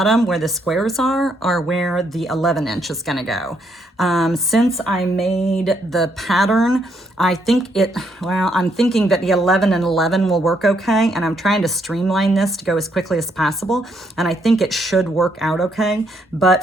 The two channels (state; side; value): normal; both; correlation 0.74